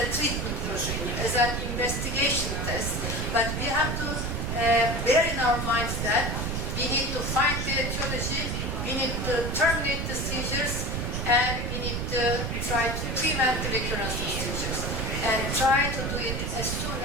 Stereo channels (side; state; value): right; noise; rumble, 2 dB below the sound